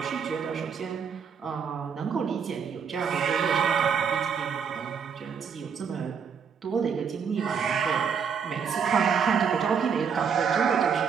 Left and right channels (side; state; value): left; quieter; 6.7 dB